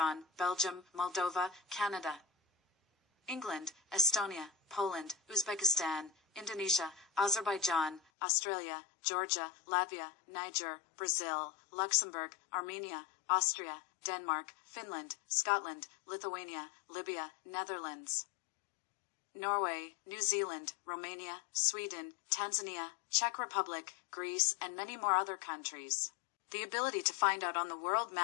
Belgium, Moldova, Canada, England, Estonia, Poland, Uzbekistan, Indonesia, Azerbaijan, Australia, Georgia, Latvia, Niger, Brazil, Luxembourg, Armenia, Austria, Denmark, Finland, Scotland, Lithuania, Libya, Netherlands, Norway, New Zealand, Romania, Sweden, Tanzania, Czech Republic, Greece, and many more other countries. The ability to find out on the world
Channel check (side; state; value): right; drops out; at 8.0 s